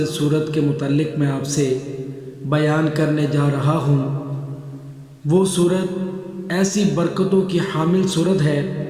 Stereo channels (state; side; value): identical; both; correlation 1.00